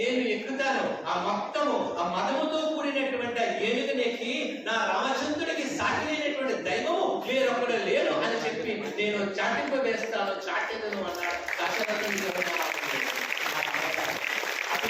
ఎక్కుతాను ఆ మొత్తము ఆ మదముతో కూడినటువంటి ఏనుగునెక్కి నా రామచంద్రుడికి సాటినటువంటి దైవము వేరొకడు లేడు అని చెప్పి నేను చాటింప వేస్తాను, చాటెదను అన్నాడు దశరథుని.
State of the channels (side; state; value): both; identical; correlation 1.00